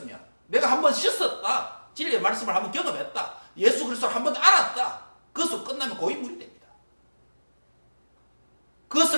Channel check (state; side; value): inverted; both; correlation -1.00